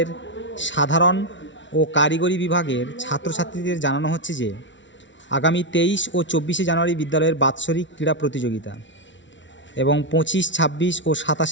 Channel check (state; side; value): late; right; 0.55 ms